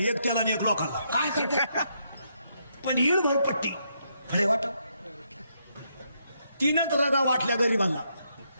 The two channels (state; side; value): inverted; both; correlation -0.77